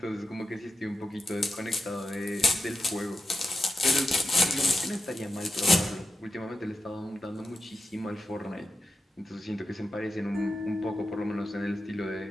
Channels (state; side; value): normal; both; correlation 0.88